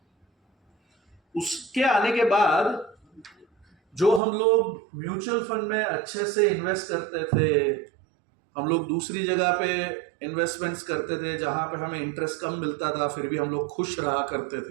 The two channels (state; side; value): drops out; left; at 4.2 s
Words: उसके आने के बाद जो हम लोग म्यूचुअल फंड में अच्छे से इन्वेस्ट करते थे, हम लोग दूसरी जगह पे इन्वेस्टमेंट्स करते थे जहां पे हमें इंटरेस्ट कम मिलता था, फिर भी हम लोग खुश रहा करते